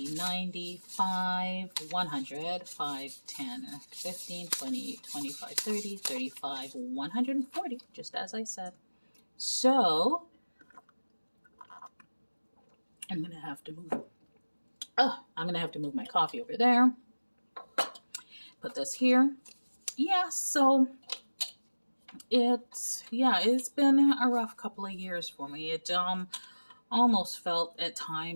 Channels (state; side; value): inverted; both; correlation -1.00